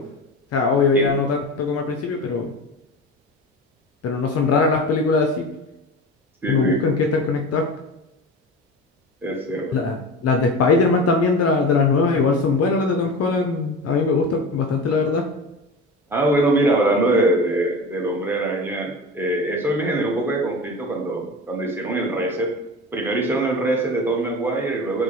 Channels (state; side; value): normal; both; correlation 0.31